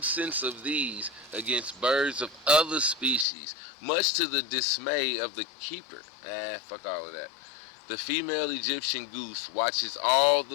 of these, against birds of other species, much to the dismay of the keeper. Fuck all of that. The female Egyptian goose watches all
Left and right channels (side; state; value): right; drops out; at 3.2 s